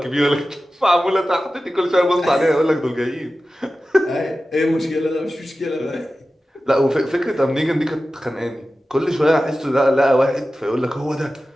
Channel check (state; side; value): normal; both; correlation 0.94